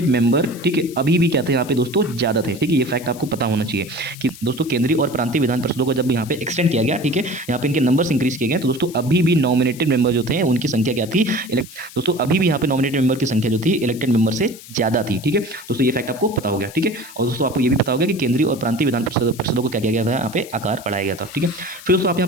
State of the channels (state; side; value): noise; left; hiss, 17 dB below the sound